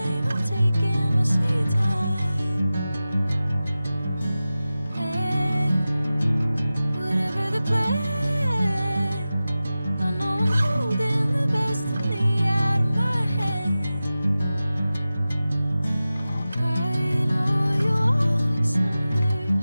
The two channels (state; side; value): inverted; both; correlation -0.95